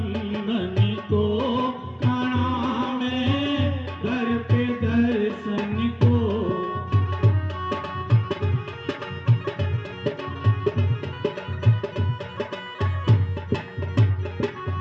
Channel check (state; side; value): identical; both; correlation 1.00